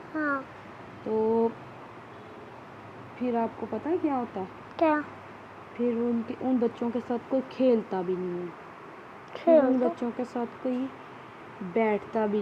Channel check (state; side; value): identical; both; correlation 1.00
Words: تو پھر آپ کو پتہ ہے کیا ہوتا ہے؟ کیا؟ پھر ان بچوں کے ساتھ کوئی کھیلتا بھی نہیں ہے, پھر ان بچوں کے ساتھ کوئی بیٹھتا